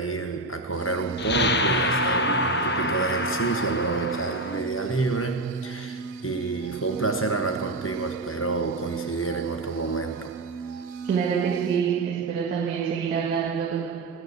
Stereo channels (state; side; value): quieter; left; 3.0 dB